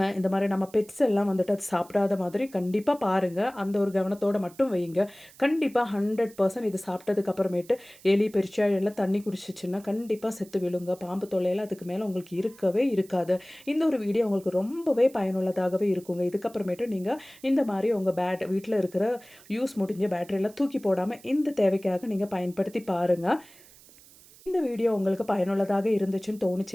இந்த மாரி நம்ம பெட்ஸ் எல்லாம் வந்துட்டு அது சாப்பிடாத மாதிரி கண்டிப்பா பாருங்க. அந்த ஒரு கவனத்தோட மட்டும் வையுங்க. கண்டிப்பா 100% இது சாப்பிட்டதுக்கு அப்புறமேட்டு எலி, பெருச்சாழி எல்லாம் தண்ணி குடிச்சுச்சுன்னா கண்டிப்பா செத்து விழுங்க. பாம்பு தொல்லையெல்லாம் அதுக்கு மேல உங்களுக்கு இருக்கவே இருக்காது. இந்த ஒரு வீடியோ உங்களுக்கு ரொம்பவே பயனுள்ளதாகவே இருக்குங்க. இதுக்கப்புறமேட்டு நீங்க இந்த மாரி உங்க வீட்ல இருக்கிற யூஸ் முடிஞ்ச பேட்டரியெல்லாம் தூக்கி போடாம இந்த தேவைக்காக நீங்க பயன்படுத்தி பாருங்க. இந்த வீடியோ உங்களுக்கு பயனுள்ளதாக இருந்துச்சுன்னு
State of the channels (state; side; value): noise; right; hiss, 24 dB below the sound